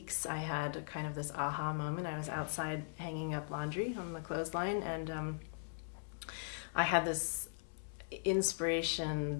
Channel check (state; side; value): silent; right; digital silence